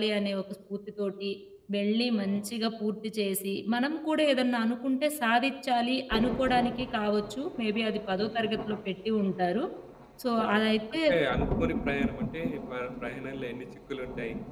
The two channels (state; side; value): identical; both; correlation 1.00